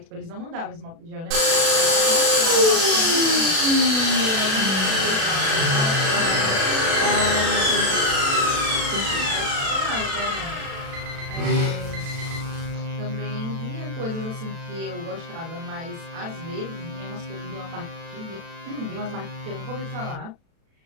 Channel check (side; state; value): left; late; 36 ms